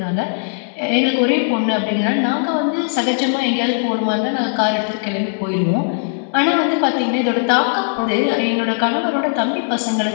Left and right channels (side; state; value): right; silent; digital silence